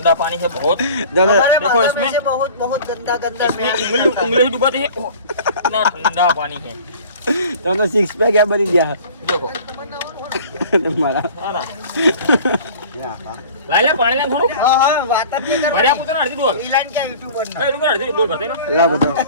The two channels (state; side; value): inverted; both; correlation -0.44